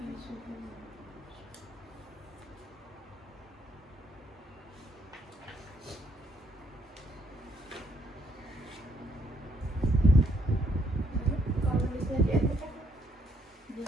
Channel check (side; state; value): both; normal; correlation 0.70